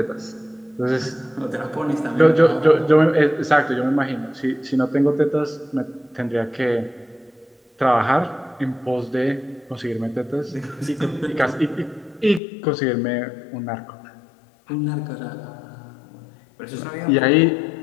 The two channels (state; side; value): drops out; right; at 12.4 s